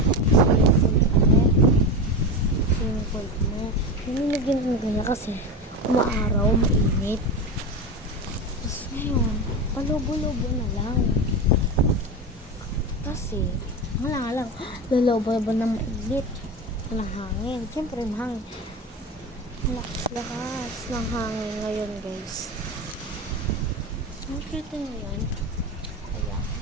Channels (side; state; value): both; normal; correlation 0.22